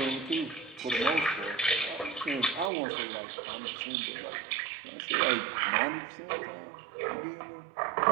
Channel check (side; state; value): left; drops out; at 2.7 s